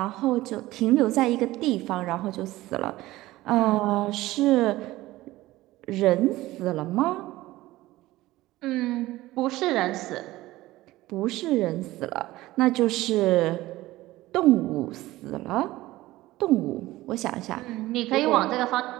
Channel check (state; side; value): quieter; left; 17.4 dB